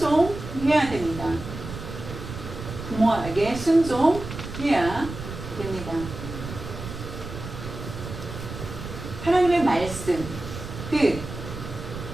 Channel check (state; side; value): noise; right; rumble, 9 dB below the sound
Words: 됩니다. 부모에게 순종해야 됩니다. 하나님의 말씀 뜻을